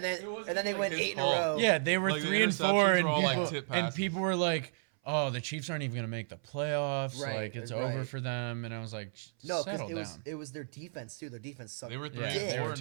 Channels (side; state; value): left; silent; 56 dB below the other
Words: then it wasn't and then they like went his 8 in a fault. row. Yeah, they were Like, the 3 and interceptions 4, and were all, like, people, tip and passes. people were like, "Oh, the Chiefs aren't even gonna make the playoffs. Right, Like it's right. over for them." And I was like, No, because settle it was down. it was their defense too. Their defense sucked. They were 3 Yeah, and they 4, were and